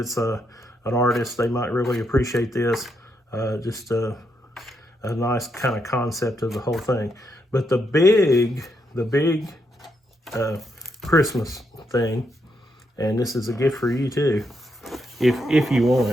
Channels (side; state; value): both; normal; correlation 0.79